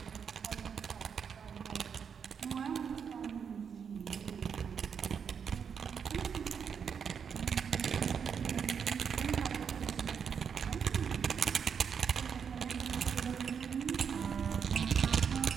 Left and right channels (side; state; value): left; quieter; 6.9 dB